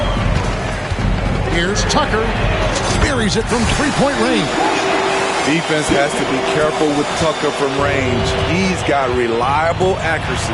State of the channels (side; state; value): both; identical; correlation 1.00